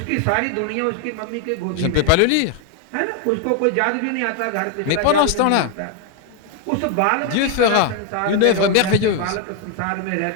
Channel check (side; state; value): both; different; correlation 0.01